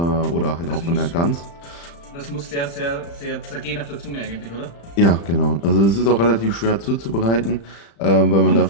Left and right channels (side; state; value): right; late; 35 ms